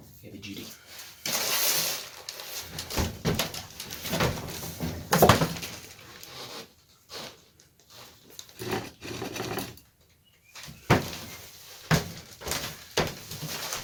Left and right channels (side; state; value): both; identical; correlation 1.00